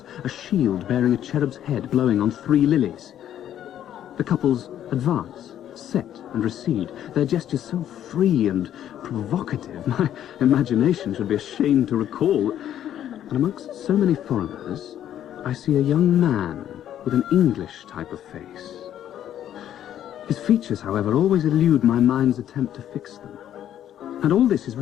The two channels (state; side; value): quieter; right; 10.9 dB